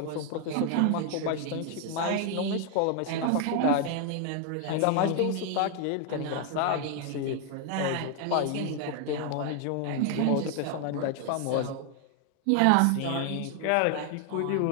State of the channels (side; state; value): both; different; correlation 0.00